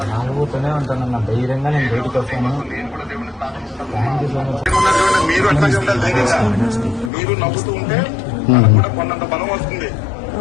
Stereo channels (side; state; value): right; drops out; at 7.1 s